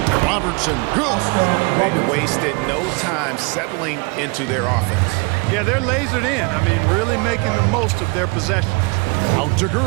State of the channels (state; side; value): quieter; left; 30.0 dB